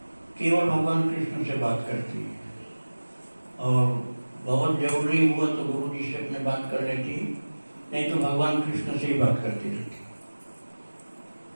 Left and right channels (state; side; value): inverted; both; correlation -1.00